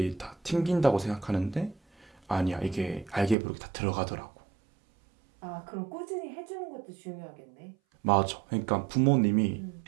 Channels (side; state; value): left; drops out; at 3.4 s